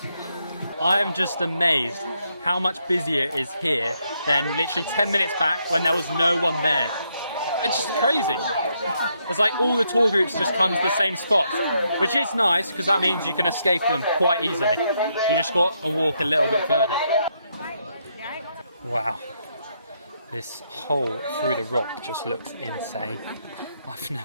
I am just amazed how much busier it is here than literally 10 minutes back when there was no one there. It's just crazy. It's like all the tour groups just come to the same spot, which is nice because that means you can escape them quite easily. You just got to walk a little bit further. Wow. This hole through the rock just looks insane. I've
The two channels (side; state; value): both; inverted; correlation -0.77